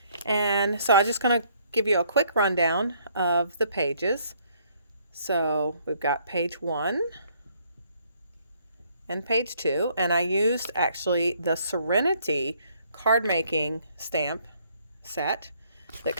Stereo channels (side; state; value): both; inverted; correlation -0.66